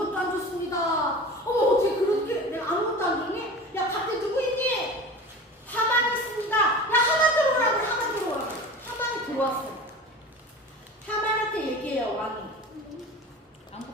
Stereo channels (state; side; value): normal; both; correlation 0.35